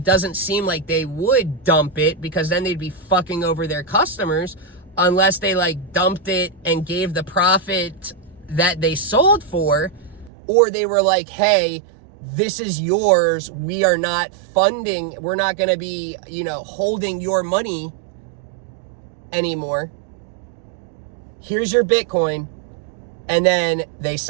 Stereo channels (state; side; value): drops out; left; at 10.3 s